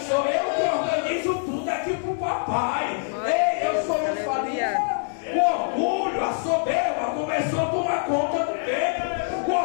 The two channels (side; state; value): right; silent; digital silence